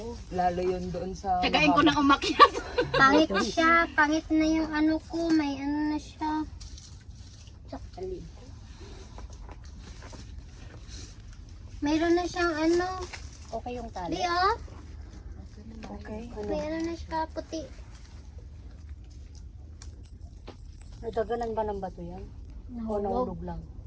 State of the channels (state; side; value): identical; both; correlation 1.00